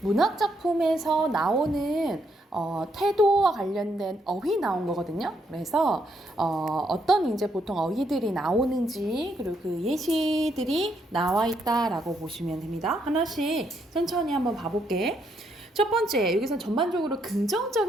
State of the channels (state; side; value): normal; both; correlation 0.75